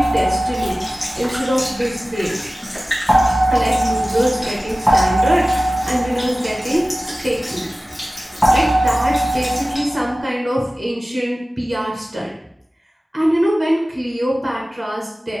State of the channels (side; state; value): both; normal; correlation 0.97